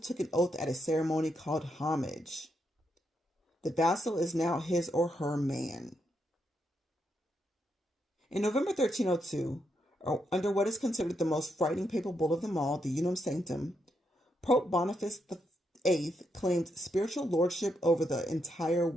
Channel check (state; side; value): normal; both; correlation 0.80